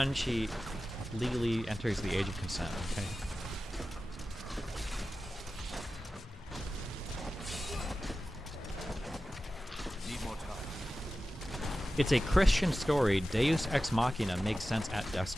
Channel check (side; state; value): both; normal; correlation 0.94